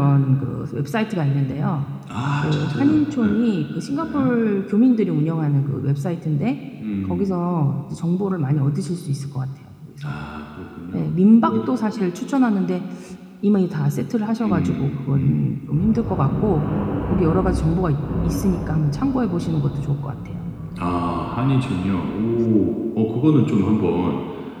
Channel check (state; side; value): identical; both; correlation 1.00